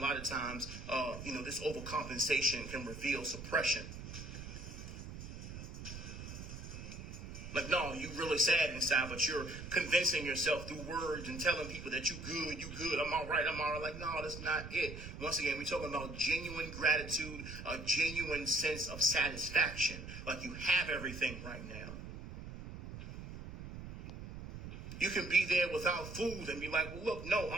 of times, this overcompensation can reveal suppression. Like, no, you really sad inside, but you're convincing yourself through words and telling people that you good, I'm all right. Like, no, that's not it. Once again, we're talking about genuine gratitude, a genuine sense of satisfaction. Like you have everything right now. You can be there without food and be like, well, look, no,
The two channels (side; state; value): right; noise; rumble, 10 dB below the sound